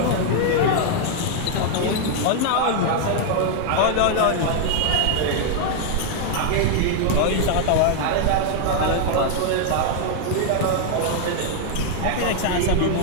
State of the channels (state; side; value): different; both; correlation 0.00